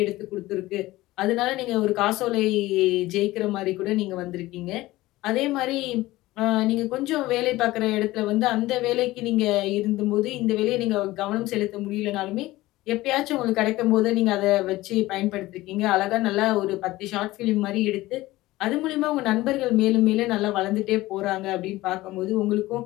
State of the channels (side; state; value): right; quieter; 17.9 dB